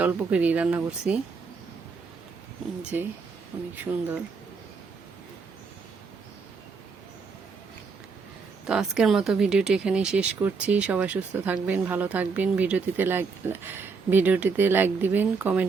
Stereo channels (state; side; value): quieter; left; 4.9 dB